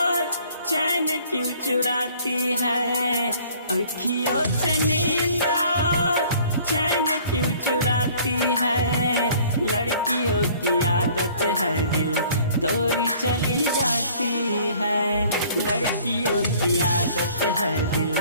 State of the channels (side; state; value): both; inverted; correlation -0.55